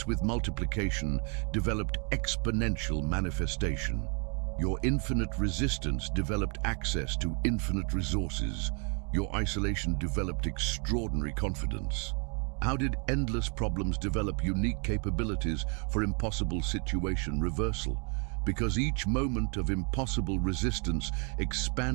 with multiplication developed exponential manifestation. Your infinite resistance developed access to infinite resources. Your isolation developed extraordinary confidence. How did endless problems develop unique capabilities for impossible situation reversal? Because each moment of impossible resistance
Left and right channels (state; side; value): quieter; left; 37.3 dB